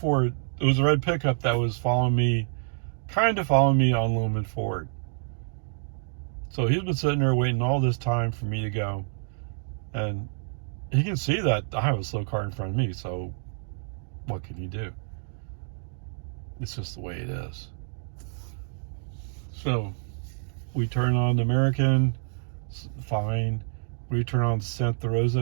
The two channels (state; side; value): silent; left; digital silence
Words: it was a red pickup that was kind of following me on Lumen Ford. So he's been sitting there waiting all this time for me to go. And he can see that I have a slow car in front of me, so what can he do? It's just the way it is. So we turn on the American, fine. We turn on Santa